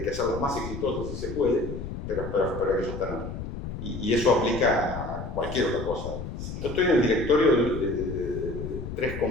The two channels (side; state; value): left; noise; rumble, 7 dB below the sound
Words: hacerlas más exitosas si se puede, pero hay que sostenerlas. Y eso aplica a cualquier otra cosa. Yo estoy en el directorio de 3